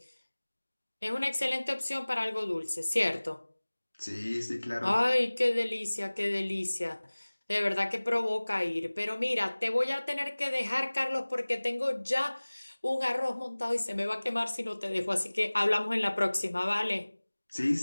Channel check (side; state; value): both; inverted; correlation -1.00